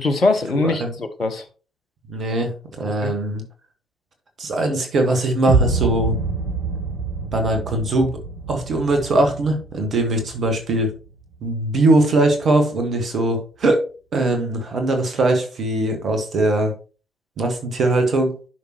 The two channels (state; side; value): normal; both; correlation 0.62